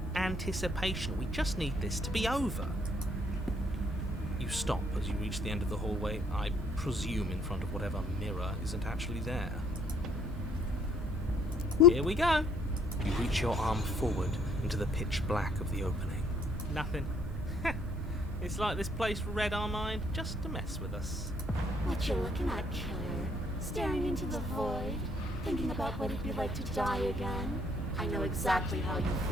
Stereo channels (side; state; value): both; normal; correlation 0.64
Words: anticipation. We just need this to be over. You stop as you reach the end of the hallway, I presume in front of whatever mirror isn't actually there. Whoop. Here we go. You reach your arm forward into the pitch black of the opening. Nothing. It's like this place read our mind just to mess with us. What you looking at, killer? Staring into the void? Thinking about what it'd be like to die again? I know exactly how you